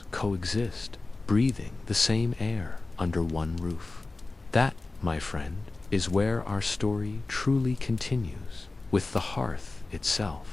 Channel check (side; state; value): right; quieter; 3.3 dB